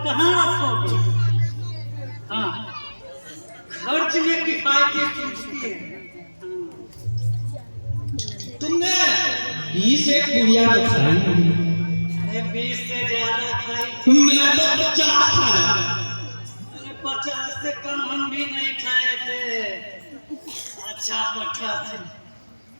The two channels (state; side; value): inverted; both; correlation -1.00